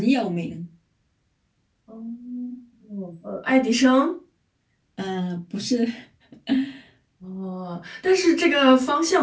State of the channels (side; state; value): both; identical; correlation 1.00